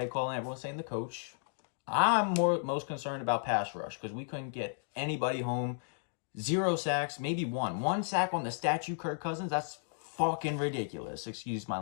calling, everyone's saying the coach. I'm most concerned about pass rush because we couldn't get anybody home. 0 sacks, maybe one. 1 sack on the statue Kirk Cousins. That's fucking ridiculous. Excuse my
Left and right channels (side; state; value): right; silent; digital silence